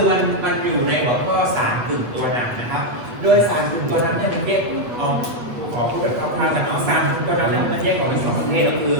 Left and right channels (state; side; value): late; left; 8.5 ms